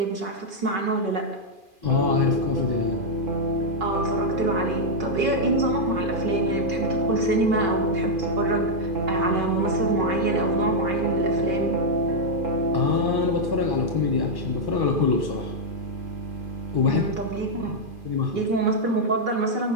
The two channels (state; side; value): late; left; 2.4 ms